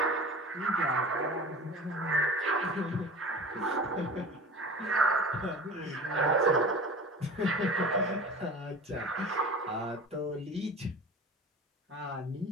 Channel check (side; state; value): both; normal; correlation 0.37